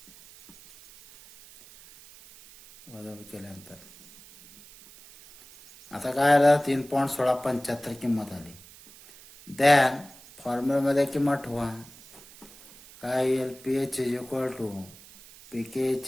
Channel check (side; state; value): right; noise; hiss, 21 dB below the sound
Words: वजाबाकी केल्यानंतर. आता काय आलं? 3.1675 किंमत आली. दॅन फॉर्म्युलामध्ये किंमत ठेवा. काय येईल? PH is equal to pK